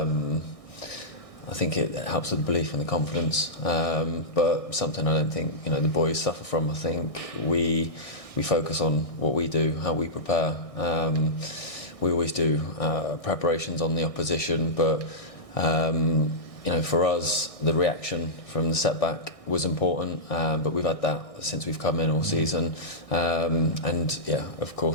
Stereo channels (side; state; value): right; late; 1.6 ms